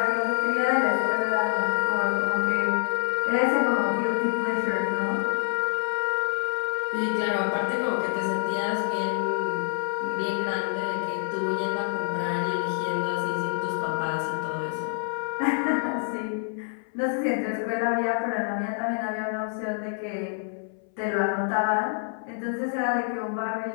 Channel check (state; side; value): silent; right; 59 dB below the other